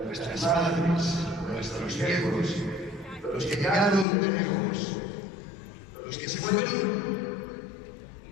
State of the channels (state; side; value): drops out; right; at 4.0 s